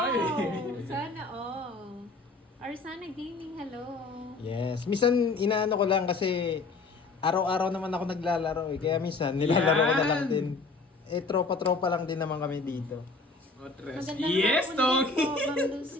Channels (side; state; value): right; quieter; 3.8 dB